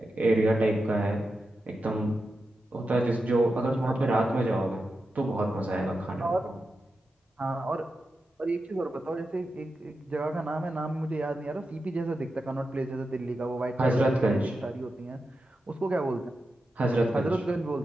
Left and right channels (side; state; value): both; normal; correlation 0.90